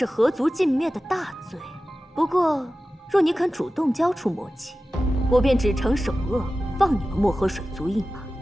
何族尽灭的大罪？不过，若你肯主动交出魔器，我便只惩首恶，放你们漠河水族一马。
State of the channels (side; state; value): both; normal; correlation 0.95